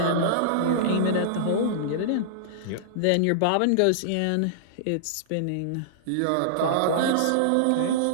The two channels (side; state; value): both; different; correlation -0.02